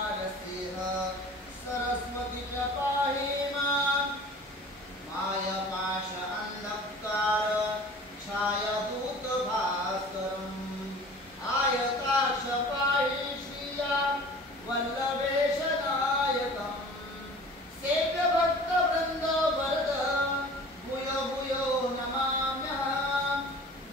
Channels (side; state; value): both; normal; correlation 0.44